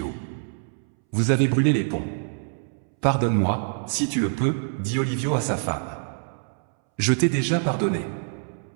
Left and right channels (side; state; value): left; silent; 62 dB below the other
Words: Vous avez brûlé les ponts. Pardonne-moi, si tu le peux, dit Olivio à sa femme. Je t'ai déjà pardonné.